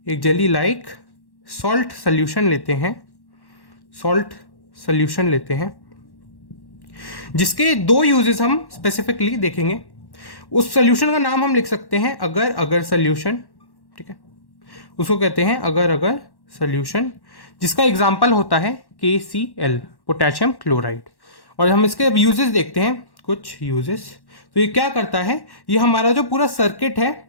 एक जेली लाइक सॉल्ट सोल्यूशन लेते हैं, जिसके दो यूजेस हम स्पेसिफिकली देखेंगे। उस सोल्यूशन का नाम हम लिख सकते हैं अगर अगर सोल्यूशन। ठीक है, उसको कहते हैं अगर अगर सोल्यूशन, जिसका एग्जाम्पल होता है KCl पोटेशियम क्लोराइड। और हम इसके अब यूजेस देखते हैं, कुछ यूजेस। तो ये क्या करता है, ये हमारा जो पूरा सर्किट है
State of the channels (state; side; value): late; right; 1.1 ms